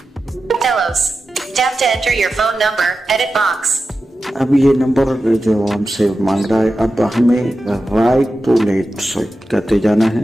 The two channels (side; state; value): both; normal; correlation 0.92